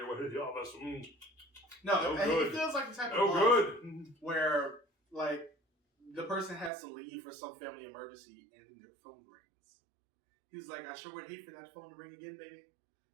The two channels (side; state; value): left; drops out; at 6.7 s